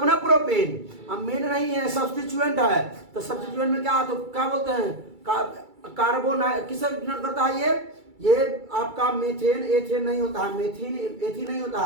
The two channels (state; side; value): late; left; 2.3 ms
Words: ना प्रोपेन, अब मेन नहीं है, सब्स्टिट्यूएंट है। तो सब्स्टिट्यूएंट में क्या, तो क्या बोलते हैं? कार्बोन किसे डिनोट करता है? ये आपका मेथेन एथेन नहीं होता है, मेथिन एथिन नहीं होता